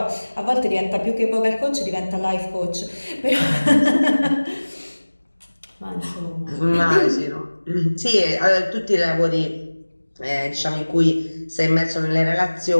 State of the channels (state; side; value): inverted; both; correlation -1.00